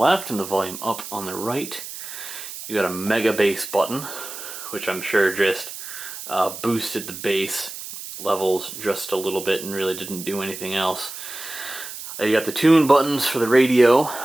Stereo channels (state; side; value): noise; right; hiss, 10 dB below the sound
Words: and the volume up on the right. You got a mega bass button, which I'm sure just boosted the bass levels just a little bit and really didn't do anything else. You got the tune buttons for the radio